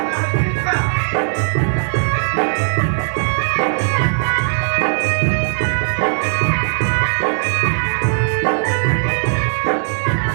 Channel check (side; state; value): left; silent; digital silence